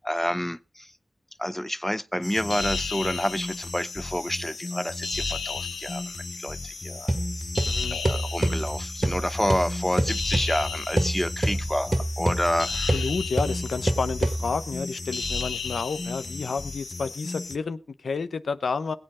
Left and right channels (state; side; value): normal; both; correlation 0.95